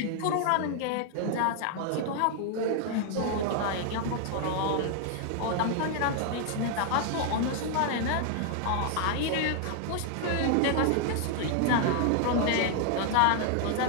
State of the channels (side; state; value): both; different; correlation 0.00